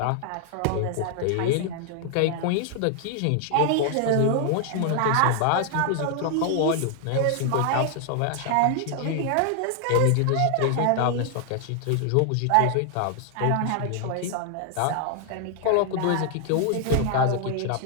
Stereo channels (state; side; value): different; both; correlation 0.00